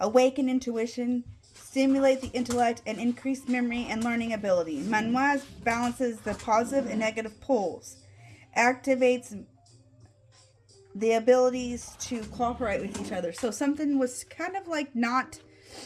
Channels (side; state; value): both; identical; correlation 1.00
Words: intuition, stimulate the intellect, and increase memory and learning ability. Manwaz balances the positive and negative poles, activates the abilities to cooperate with each other. So something was kind of like not,